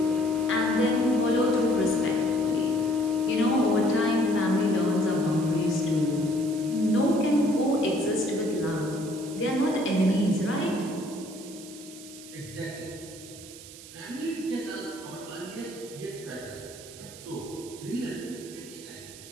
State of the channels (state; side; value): noise; right; hiss, 16 dB below the sound